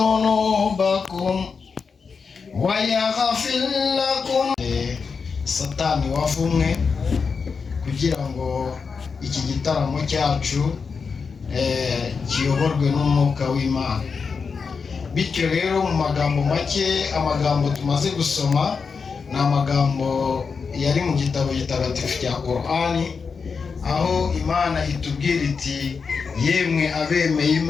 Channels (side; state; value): right; quieter; 5.4 dB